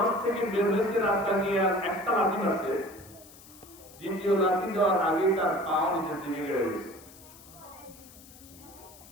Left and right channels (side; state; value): left; noise; hiss, 21 dB below the sound